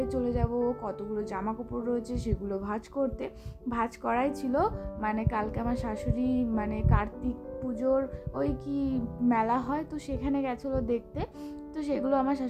চলে যাব, কতগুলো জামা কাপড় রয়েছে সেগুলো ভাঁজ করতে। ভাঁজ করাই ছিল, মানে কালকে আমার শাশুড়ি মানে কার্তিক পুজোর ওই কি মেলা হয়, তো সেখানে গেছিলো দেখতে। তো সেগুলো আমার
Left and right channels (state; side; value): identical; both; correlation 1.00